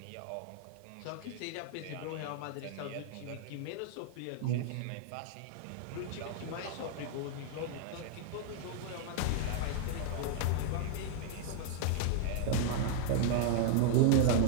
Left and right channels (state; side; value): different; both; correlation -0.01